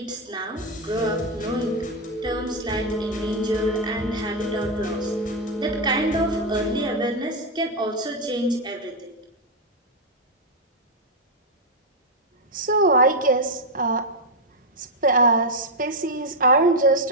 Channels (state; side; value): normal; both; correlation 0.02